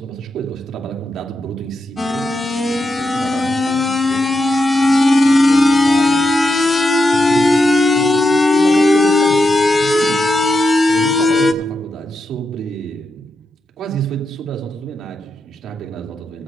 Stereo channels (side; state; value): both; normal; correlation 0.86